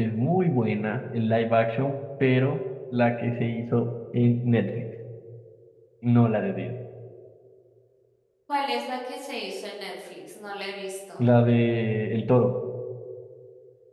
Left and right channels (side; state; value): both; identical; correlation 1.00